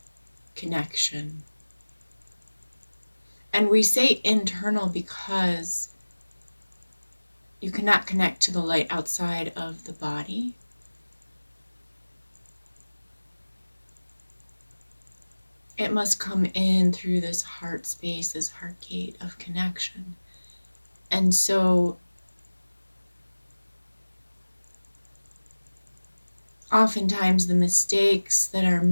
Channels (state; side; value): inverted; both; correlation -1.00